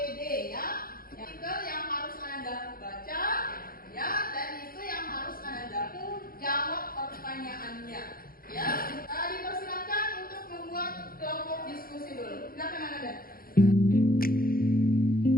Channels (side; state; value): right; late; 0.42 ms